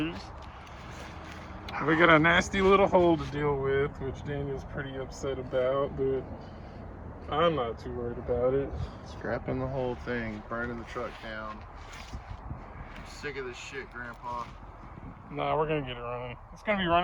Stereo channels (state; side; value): identical; both; correlation 1.00